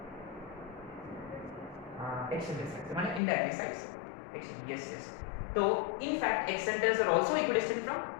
हाँ एक्सेंटर साइड से, माने इनडायरेक्टली साइड से एक्शन, यस। तो in fact excentres are also equidistant from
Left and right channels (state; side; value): drops out; right; at 3.2 s